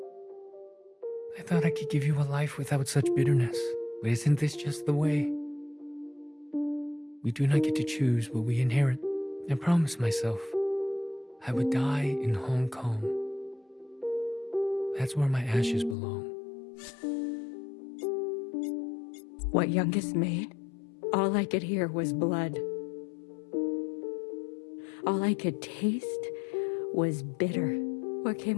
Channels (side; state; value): right; drops out; at 16.0 s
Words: I thought I could give you a life without such bitterness. But isn't this just the way? We do not get to choose what we inherit. I promised myself I would die in Hong Kong. That's where my ashes belong. What Youngest made, all I could hear was blood. All I could taste was bitter. What